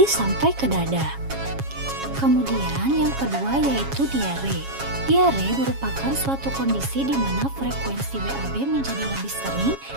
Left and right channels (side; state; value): left; late; 7.3 ms